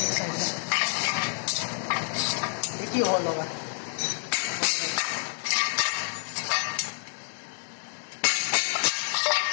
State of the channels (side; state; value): right; silent; digital silence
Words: साइड में एक ही होल होगा।